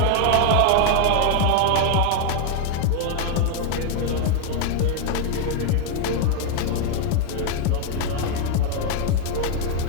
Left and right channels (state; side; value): different; both; correlation 0.01